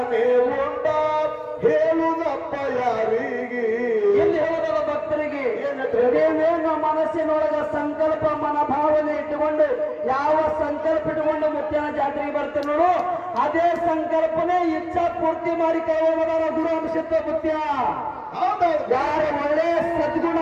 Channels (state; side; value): identical; both; correlation 1.00